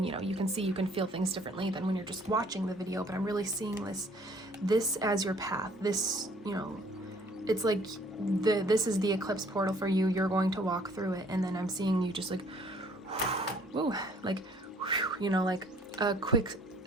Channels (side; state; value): both; normal; correlation 0.58